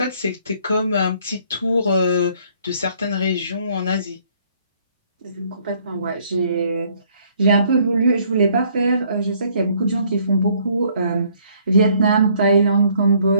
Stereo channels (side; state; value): both; inverted; correlation -0.63